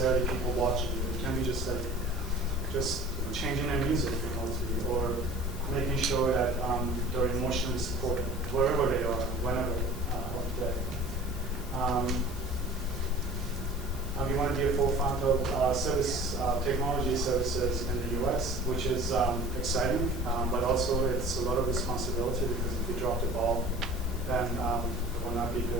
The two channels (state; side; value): normal; both; correlation 0.42